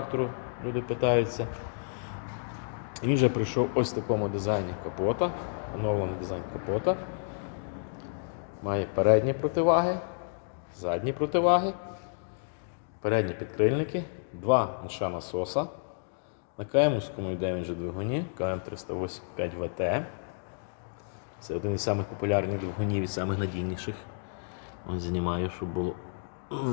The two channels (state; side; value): silent; right; digital silence